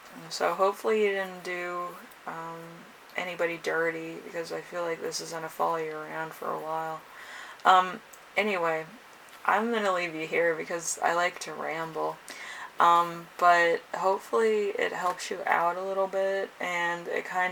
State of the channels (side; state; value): both; identical; correlation 1.00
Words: so hopefully you didn't do anybody dirty, because I feel like this is going to follow you around for a while. Anyway, I'm going to leave you here because I like to ramble. But hopefully it helps you out a little bit, and it